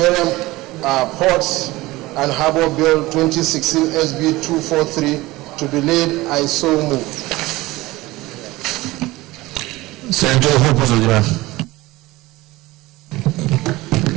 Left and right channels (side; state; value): left; quieter; 19.4 dB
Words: Ports and Harbor Bill 2016 SB 243 to be laid. I so move. Senator Hope.